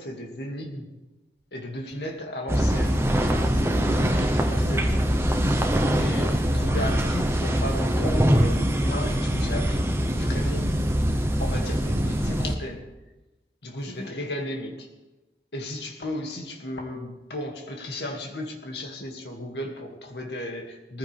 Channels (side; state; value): both; normal; correlation 0.86